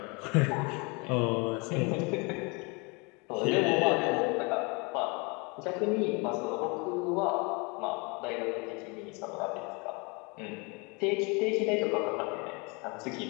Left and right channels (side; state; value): right; quieter; 29.7 dB